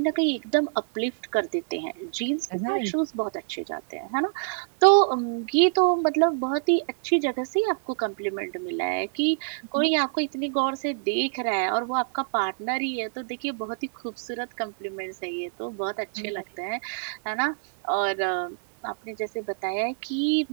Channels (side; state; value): left; silent; 61 dB below the other